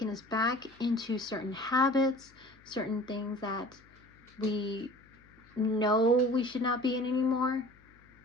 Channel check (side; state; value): left; noise; hum, 28 dB below the sound